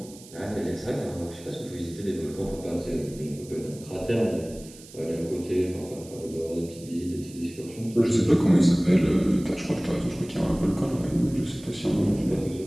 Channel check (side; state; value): right; noise; hiss, 20 dB below the sound